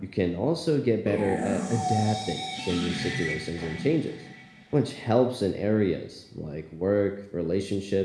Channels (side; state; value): both; identical; correlation 1.00